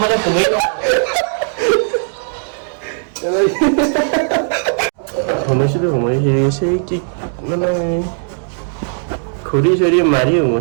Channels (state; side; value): silent; left; digital silence